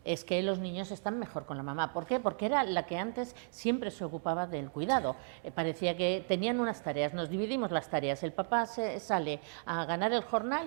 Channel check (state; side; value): silent; left; digital silence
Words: es que los niños están mejor con la mamá. ¿Por qué? Porque era la que antes siempre se ocupaba del cuidado. Parecía que tenían unas tareas, nos dividimos las tareas. El papá sale a ganar el